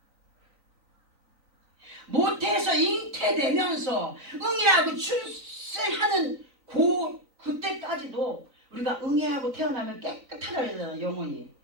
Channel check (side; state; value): left; late; 3.9 ms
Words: 모태에서 잉태되면서 응애하고 출생하는 그때까지도 우리가 응애하고 태어나면 깨끗하게 되잖아요. 영혼이.